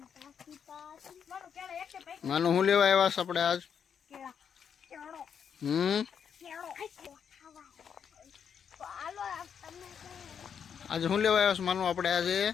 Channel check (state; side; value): quieter; right; 7.5 dB